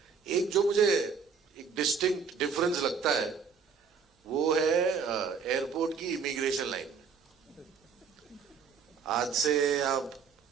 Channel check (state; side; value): quieter; left; 5.9 dB